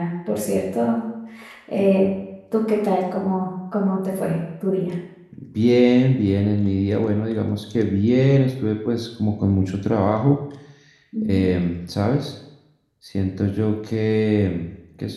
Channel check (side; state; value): both; identical; correlation 1.00